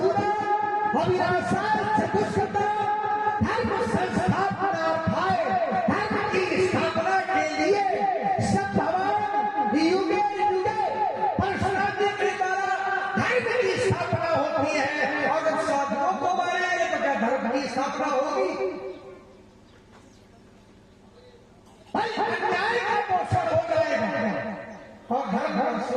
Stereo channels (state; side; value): identical; both; correlation 1.00